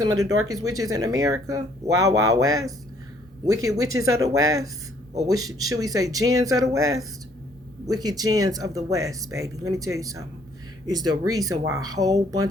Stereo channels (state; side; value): normal; both; correlation 0.63